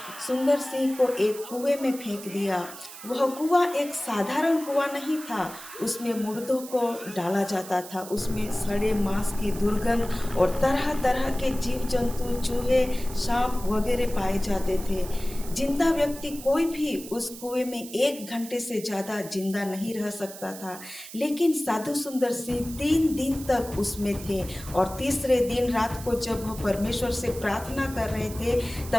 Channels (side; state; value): right; noise; hiss, 14 dB below the sound